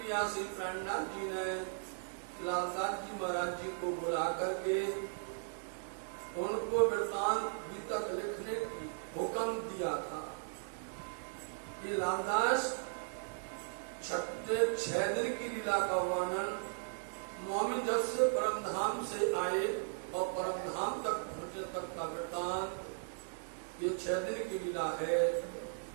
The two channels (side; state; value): left; silent; digital silence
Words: श्री प्रणनाथ जी ने लालदास जी महाराज जी को बुला करके उनको वृत्तांत गीतक लिखने की हुक्म दिया था कि लालदास 6 दिन की लीला का वर्णन मोमिन जब से परम धाम से आए और परम धाम तक पहुंचे तक का वृत्तांत ये 6 दिन की लीला है,